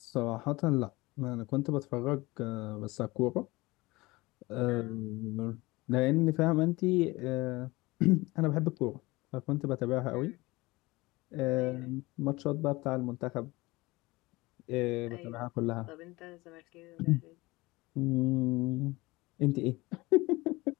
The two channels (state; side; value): quieter; right; 21.6 dB